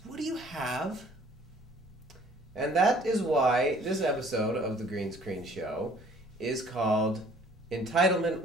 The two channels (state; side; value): normal; both; correlation 0.56